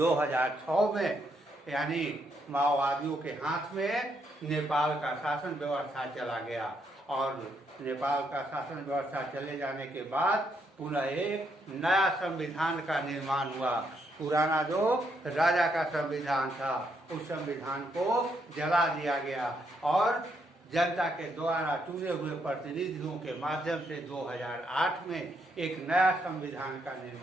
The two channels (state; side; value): normal; both; correlation 0.76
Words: में यानी माओवादियों के हाथ में नेपाल का शासन व्यवस्था चला गया और नेपाल का शासन व्यवस्था चले जाने के बाद पुनः एक नया संविधान का निर्माण हुआ। पुराना जो राजा का संविधान था उस संविधान को जला दिया गया और जनता के द्वारा चुने हुए प्रतिनिधियों के माध्यम से 2008 में एक नया संविधान का